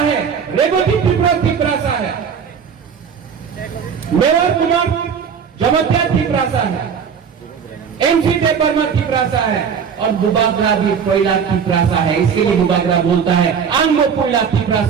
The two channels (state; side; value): quieter; left; 6.9 dB